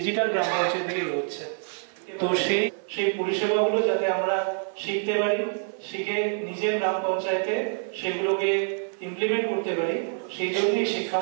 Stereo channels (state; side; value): silent; left; 61 dB below the other